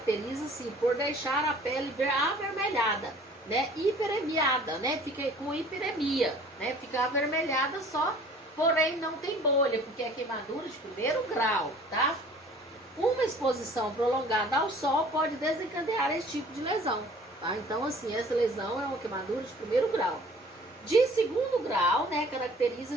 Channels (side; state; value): both; normal; correlation 0.50